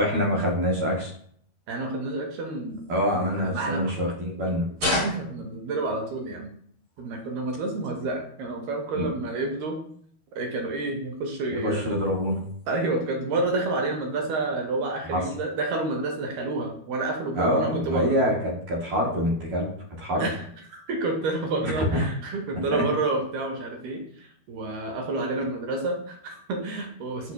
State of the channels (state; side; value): late; left; 13 ms